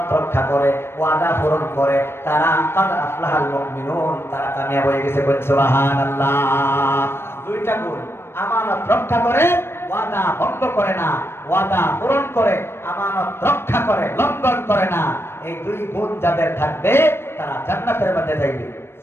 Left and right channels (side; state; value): right; late; 0.12 ms